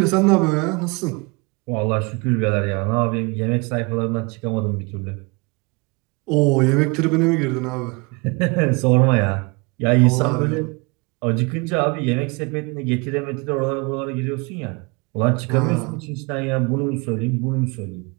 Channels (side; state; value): left; quieter; 28.7 dB